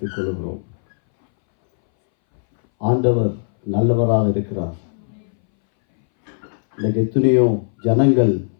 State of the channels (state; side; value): silent; right; 63 dB below the other